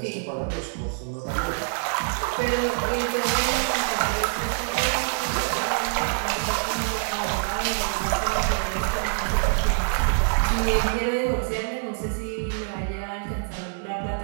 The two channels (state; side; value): silent; left; digital silence